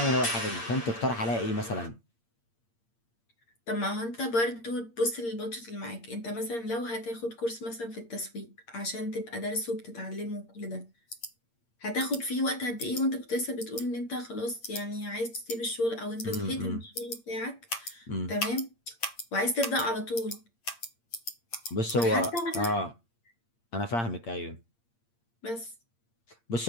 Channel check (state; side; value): late; right; 8.7 ms